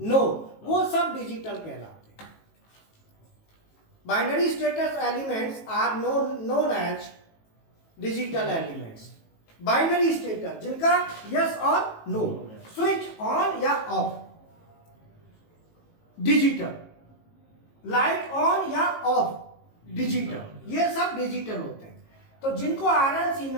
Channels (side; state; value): right; late; 18 ms